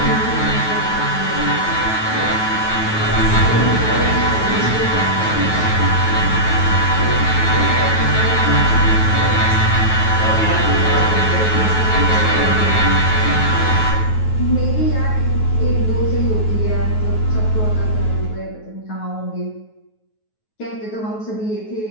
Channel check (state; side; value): late; right; 9.3 ms